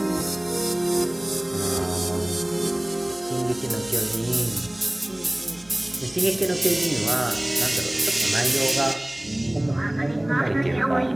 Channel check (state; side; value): noise; right; hum, 29 dB below the sound